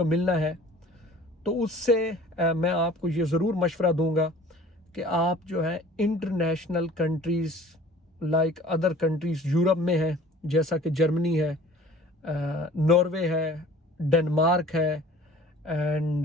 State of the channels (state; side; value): normal; both; correlation 0.48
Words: मिलना है, तो उससे मैं आपको ये ज़रूर मशवरा दूंगा कि आप जो है international countries like other countries Europe में है, जैसा कि जर्मनी है, नॉर्वे है, डेनमार्क है,